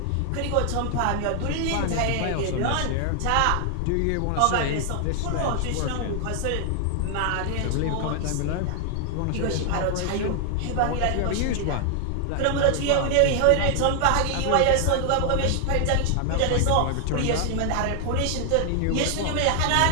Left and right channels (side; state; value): both; different; correlation 0.00